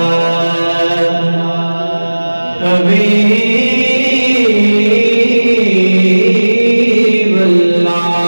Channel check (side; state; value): both; inverted; correlation -1.00